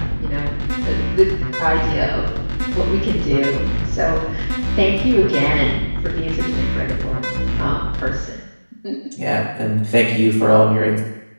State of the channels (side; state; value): both; inverted; correlation -1.00